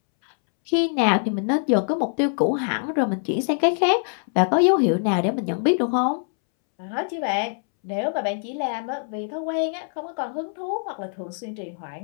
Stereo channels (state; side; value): silent; right; 63 dB below the other